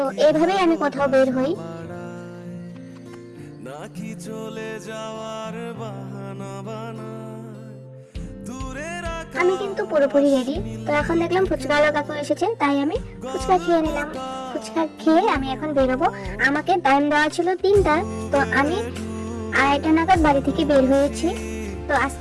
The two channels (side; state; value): both; identical; correlation 1.00